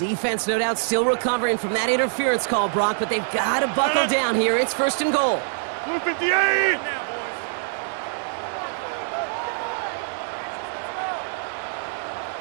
no doubt, still recovering from that interference call, Brock, but they've got to buckle down here. It's 1st and goal. 258!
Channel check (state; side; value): silent; left; digital silence